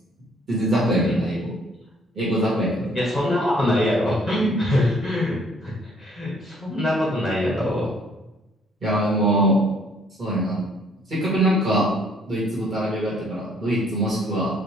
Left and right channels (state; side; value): normal; both; correlation 0.62